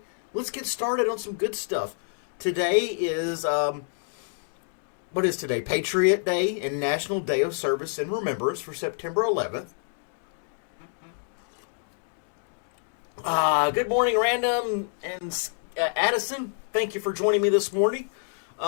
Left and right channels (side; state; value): right; silent; digital silence